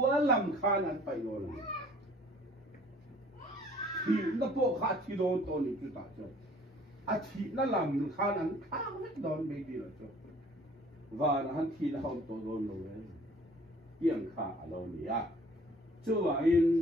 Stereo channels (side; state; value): both; normal; correlation 0.53